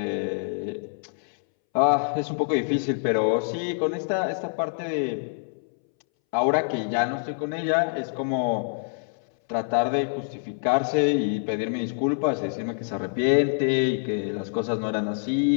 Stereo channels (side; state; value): right; silent; 61 dB below the other